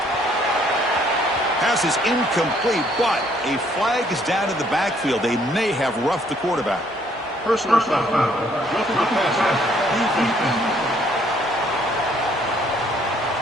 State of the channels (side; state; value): both; normal; correlation 0.65